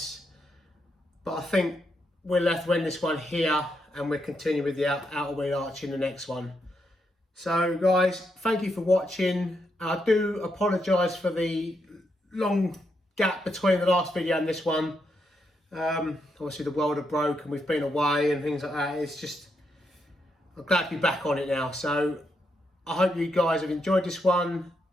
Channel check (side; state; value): both; normal; correlation 0.81